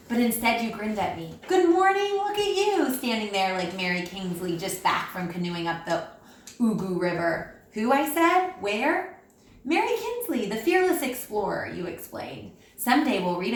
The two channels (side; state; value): both; identical; correlation 1.00